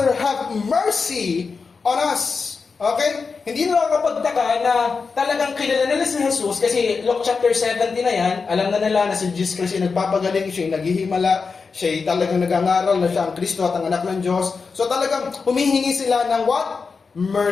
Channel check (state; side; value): quieter; right; 4.9 dB